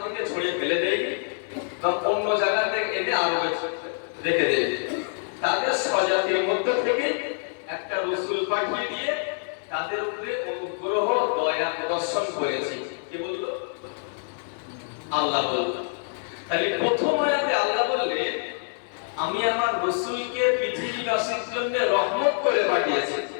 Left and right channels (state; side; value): silent; right; 59 dB below the other